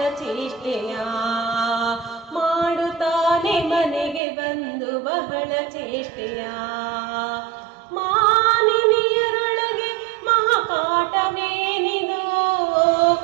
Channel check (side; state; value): left; drops out; at 4.2 s